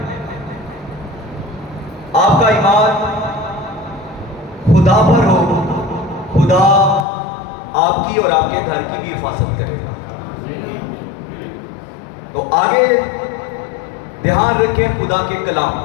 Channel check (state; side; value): drops out; right; at 7.1 s